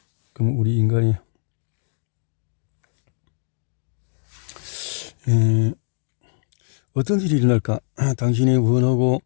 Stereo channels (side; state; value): right; silent; digital silence